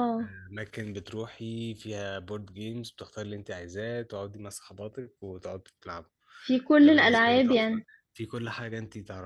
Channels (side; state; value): both; identical; correlation 1.00